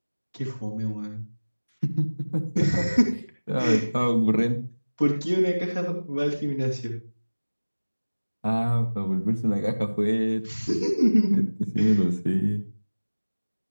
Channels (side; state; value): both; inverted; correlation -1.00